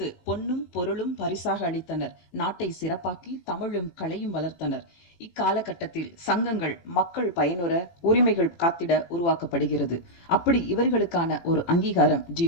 பொன்னும் பொருளும் பரிசாக அளித்தனர். நாட்டை சிறப்பாக்கி தமிழும் கலையும் வளர்த்தனர். இக்காலகட்டத்தில் சங்கங்கள் மக்கள் பயனுற உரிமைகள் காத்திட உருவாக்கப்படுகிறது. அப்படி இவர்களுக்கான ஒரு அங்கீகாரம்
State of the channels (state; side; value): late; right; 18 ms